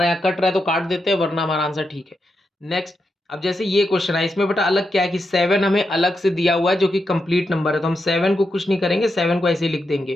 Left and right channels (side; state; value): both; normal; correlation 0.85